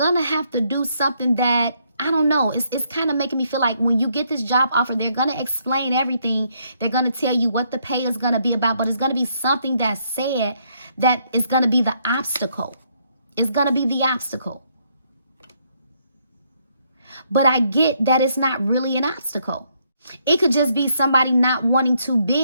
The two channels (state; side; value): inverted; both; correlation -0.72